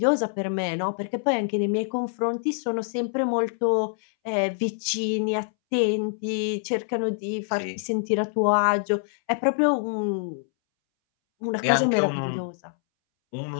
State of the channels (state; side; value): silent; right; 61 dB below the other